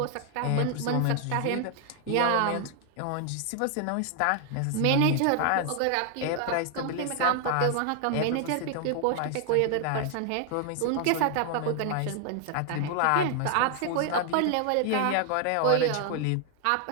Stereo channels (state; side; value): different; both; correlation 0.00